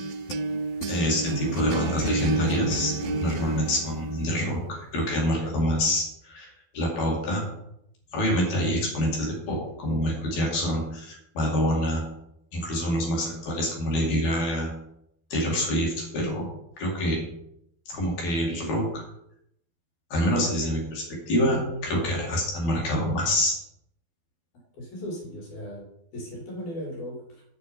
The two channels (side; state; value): right; late; 12 ms